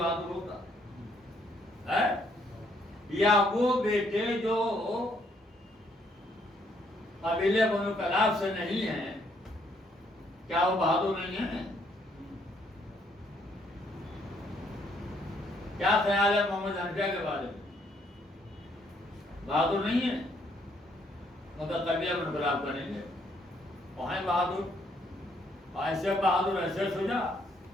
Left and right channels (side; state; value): both; normal; correlation 0.69